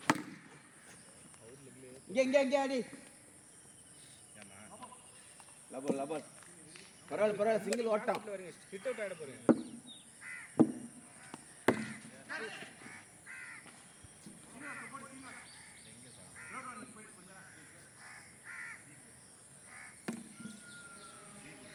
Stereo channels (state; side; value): identical; both; correlation 1.00